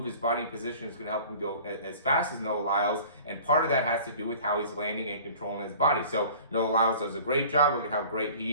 his body in position is going to help him go as fast as Noah Lyles, and part of that has to do with how he's landing and controlling his body. So Noah Lyles does a great job. Look at how great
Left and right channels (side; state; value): both; inverted; correlation -0.46